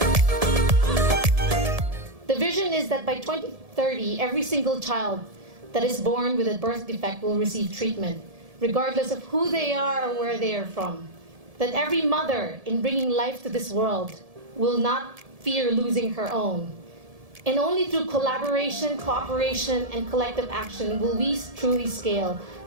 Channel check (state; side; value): late; left; 1.7 ms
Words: The vision is that by 2030, every single child that is born with a birth defect will receive treatment. regardless of who they are or where they are from. That every mother, in bringing life to this world, will not fear losing her own. And only through collaboration, cooperation, and collective action will we truly scale